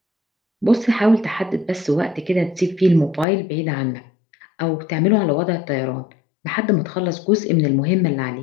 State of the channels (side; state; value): right; drops out; at 3.2 s